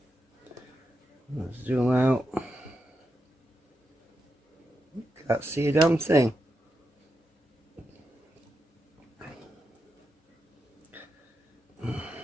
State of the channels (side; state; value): both; normal; correlation 0.86